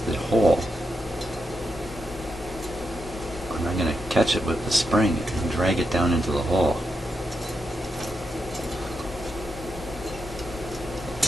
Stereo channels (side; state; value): both; normal; correlation 0.84